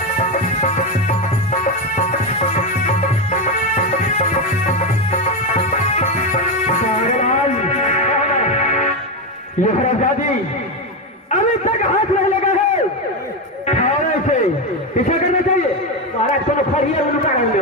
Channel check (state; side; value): normal; both; correlation 0.11